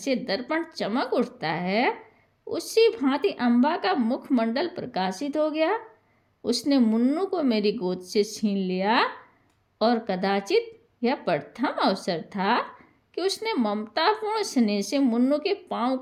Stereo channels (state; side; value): identical; both; correlation 1.00